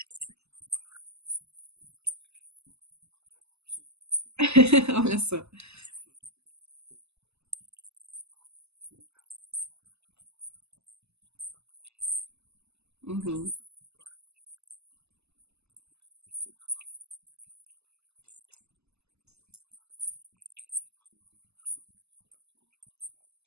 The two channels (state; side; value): late; left; 0.79 ms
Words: Olha só. Uhum.